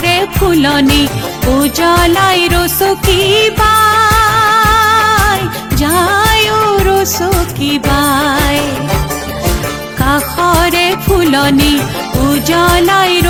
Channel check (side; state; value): both; identical; correlation 1.00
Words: ফুলনি উজ্বলাই ৰচকী বাই, যায় ৰচকী বাই। কাষৰে ফুলনি উজ্বলাই